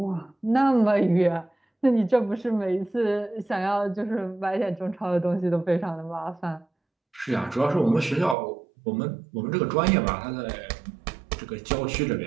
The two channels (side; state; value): left; drops out; at 8.3 s